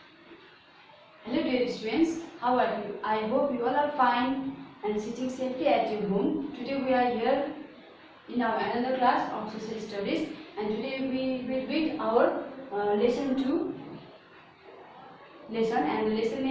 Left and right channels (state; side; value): identical; both; correlation 1.00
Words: Hello dear students, how are you? I hope you all are fine and sitting safely at your home. Today we are here in our another class of social studies, and today we will read our lesson 2 lesson, and the lesson